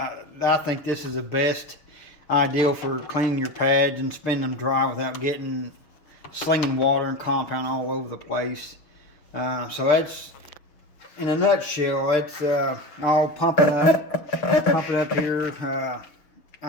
think this is the best ideal for cleaning your pads and spinning them dry without slinging water and compound all over the place. So that's, in a nutshell, that's I'll pump it up here.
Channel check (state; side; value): late; right; 6.7 ms